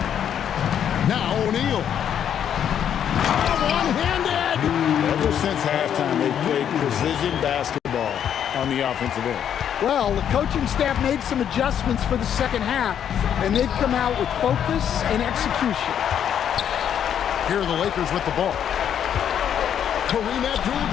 Now O'Neal. One-handed. Ever since halftime, they've played precision basketball on the offensive end. Well, the coaching staff made some adjustments for the second half, and they've come out with focus and execution. Here are the Lakers with the ball. Kareem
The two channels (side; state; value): right; quieter; 9.1 dB